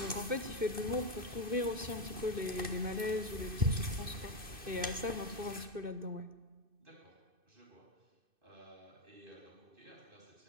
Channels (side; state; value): left; late; 2.6 ms